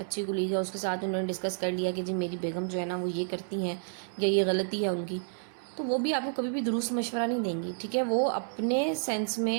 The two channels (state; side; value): silent; left; 58 dB below the other